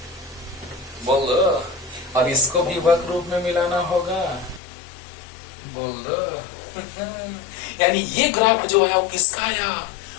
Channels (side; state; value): right; drops out; at 4.6 s